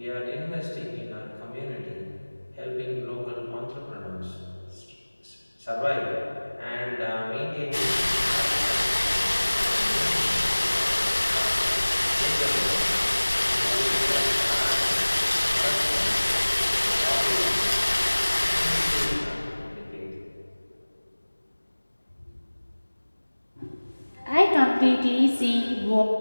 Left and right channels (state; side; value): inverted; both; correlation -1.00